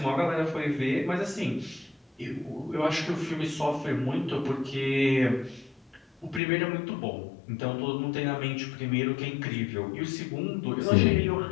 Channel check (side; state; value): right; drops out; at 6.4 s